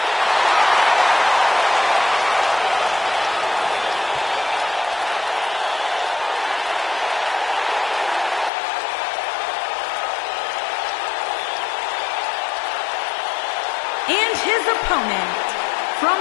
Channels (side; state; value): right; drops out; at 8.5 s